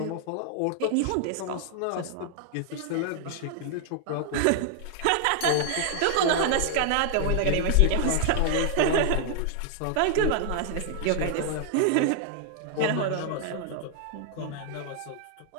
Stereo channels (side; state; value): both; different; correlation 0.00